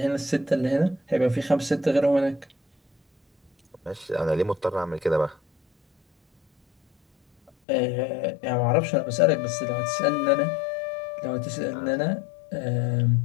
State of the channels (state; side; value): drops out; right; at 7.5 s